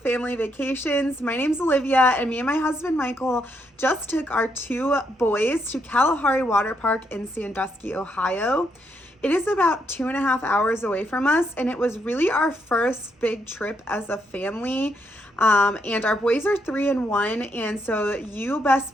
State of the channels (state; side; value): normal; both; correlation 0.77